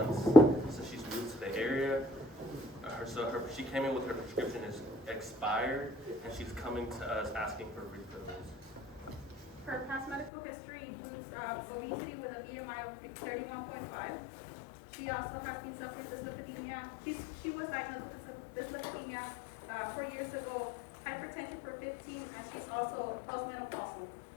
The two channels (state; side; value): drops out; right; at 10.3 s